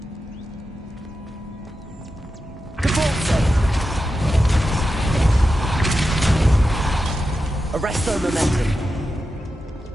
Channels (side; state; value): both; normal; correlation 0.90